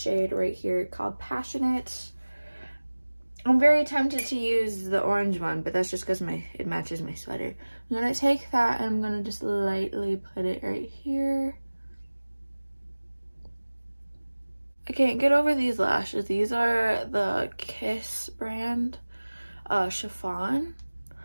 right here called Passionate. I'm very tempted to use the orange one, but that's just because it matches my sweater. I'm gonna take that and I'm gonna just lightly put it right here. I can't get over these lashes. These are the Kiss brand chiffon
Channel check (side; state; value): both; inverted; correlation -1.00